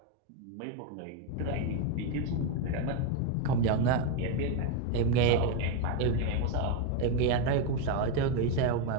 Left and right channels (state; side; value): different; both; correlation 0.02